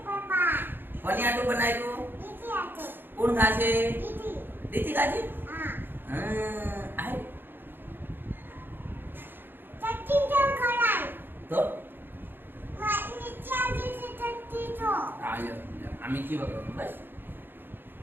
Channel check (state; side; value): late; left; 0.098 ms